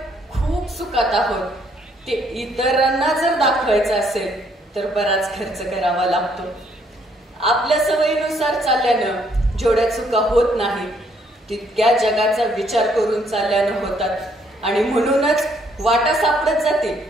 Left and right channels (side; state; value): both; normal; correlation 0.68